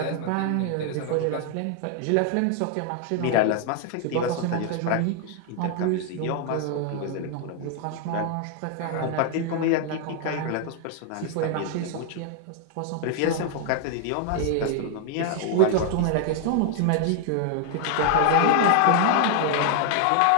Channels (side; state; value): both; different; correlation 0.00